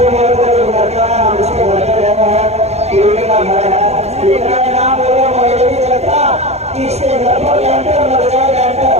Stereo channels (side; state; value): left; late; 0.31 ms